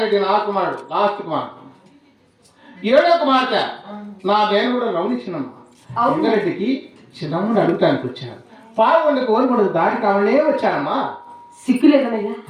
నా కుమారుడు లాస్ట్ కుమారుడు 7వ కుమార్తె నా దేవుడు రమణించినమ్మా ఎంగరెడ్డికి చిన్నమ్మని అడుగుతానికి వచ్చారు పాల్గొండకు ఓరిపడుకు దాటి కావాలనే వచ్చానమ్మా సిగ్గు లేదనయ్యా.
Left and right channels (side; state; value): both; identical; correlation 1.00